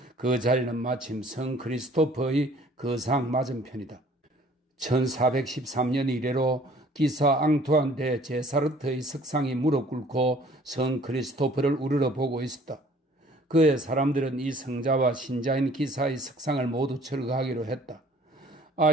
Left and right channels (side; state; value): both; normal; correlation 0.54